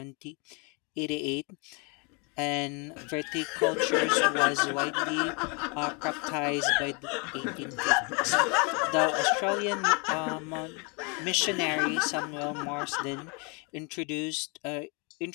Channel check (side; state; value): right; quieter; 32.8 dB